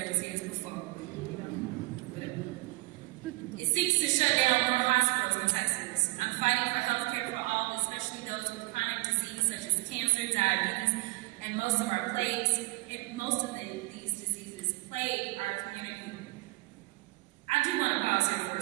It seeks to shut down more hospitals in Texas. I'm fighting for health care for all, especially those with chronic disease such as cancer, diabetes, and most of our plagues. These diseases plague our community. I do want to pause here for a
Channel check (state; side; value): quieter; left; 23.1 dB